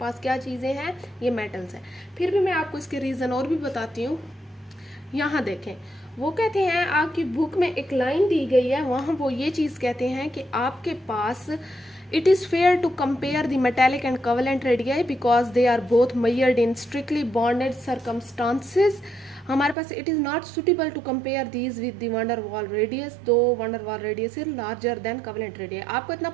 क्या चीज़ें हैं, ये मेटल्स हैं। फिर भी मैं आपको इसके रीज़न और भी बताती हूँ। यहाँ देखें, वो कहते हैं आपकी बुक में एक लाइन दी गई है, वहाँ वो ये चीज़ कहते हैं कि आपके पास it is fair to compare the metallic and covalent radii because they are both measured in strictly bonded circumstances. हमारे पास it is not suitable to compare these with the van der Waals radius, though van der Waals radius is larger than covalent radii. आपको इतना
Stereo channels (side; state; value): left; drops out; at 19.8 s